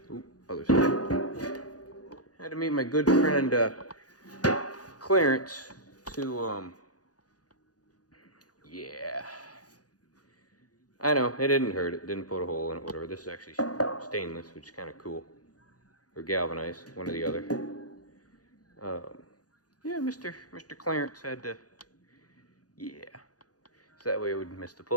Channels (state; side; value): late; right; 0.68 ms